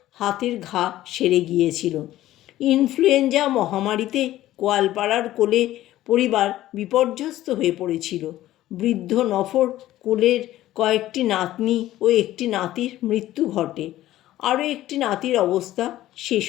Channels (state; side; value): quieter; right; 14.6 dB